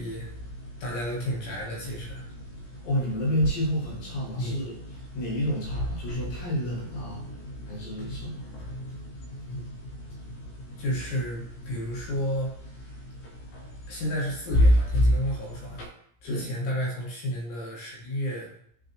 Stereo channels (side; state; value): right; late; 17 ms